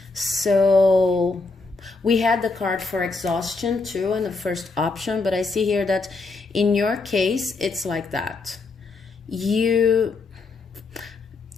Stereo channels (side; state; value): right; quieter; 3.8 dB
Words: So we had the card for exhaustion too in the first option, but I see here that in your case, it's like that. You